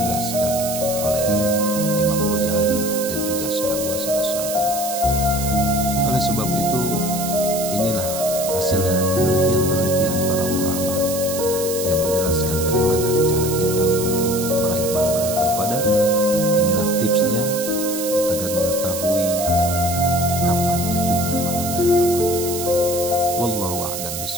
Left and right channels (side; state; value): right; noise; hiss, 6 dB below the sound